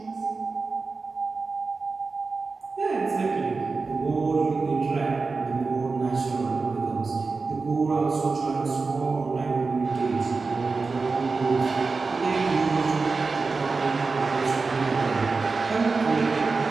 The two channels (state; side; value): quieter; left; 4.2 dB